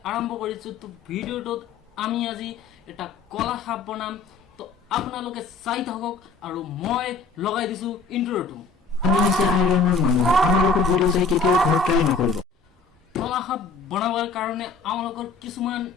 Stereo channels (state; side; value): quieter; right; 4.4 dB